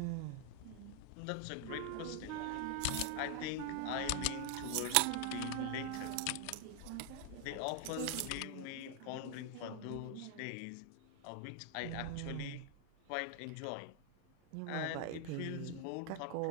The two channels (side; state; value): both; different; correlation 0.00